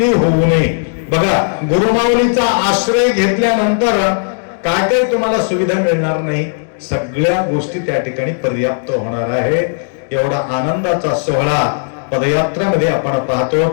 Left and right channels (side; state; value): right; silent; digital silence